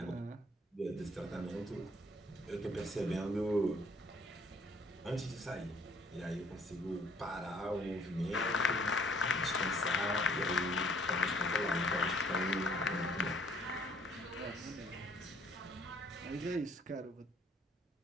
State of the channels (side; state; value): both; normal; correlation 0.60